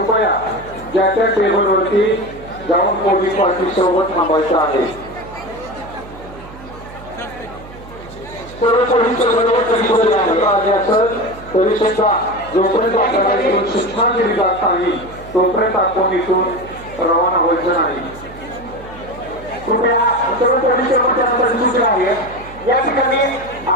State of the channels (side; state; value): right; noise; hum, 17 dB below the sound